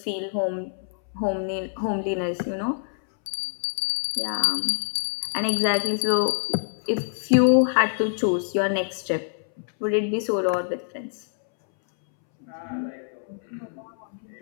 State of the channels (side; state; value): right; silent; 61 dB below the other